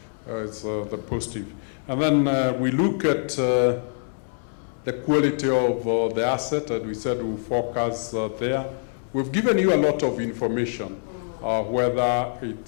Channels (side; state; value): right; silent; digital silence